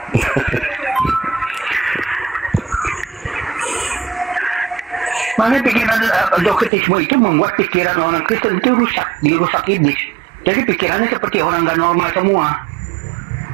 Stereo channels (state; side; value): drops out; left; at 6.7 s